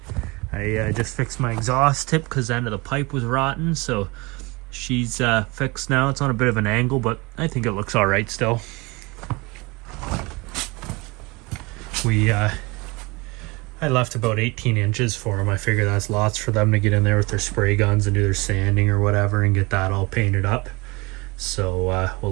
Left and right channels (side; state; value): left; quieter; 25.4 dB